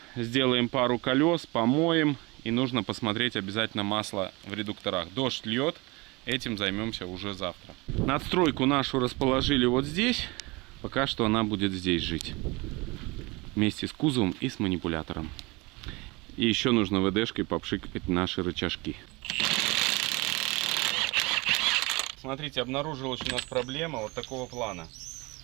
сделаем пару колес, помоем. И нужно посмотреть обязательно масло в редукторах. Дождь льет. Этим займемся уже завтра. Надстройку нашу расположили вот здесь. Пока что она будет здесь жить. Вместе с кузовом и с манипулятором. И еще нужно ВДшкой попшикать наши рычажки. Смотрите, обнаружилась у нас проблема вот такого плана.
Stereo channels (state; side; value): quieter; left; 25.0 dB